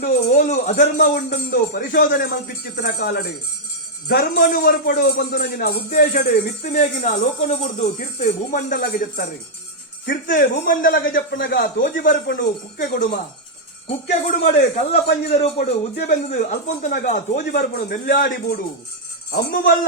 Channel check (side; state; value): both; normal; correlation -0.05